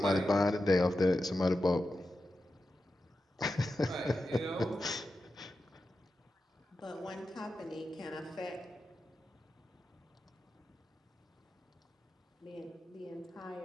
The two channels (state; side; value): normal; both; correlation 0.91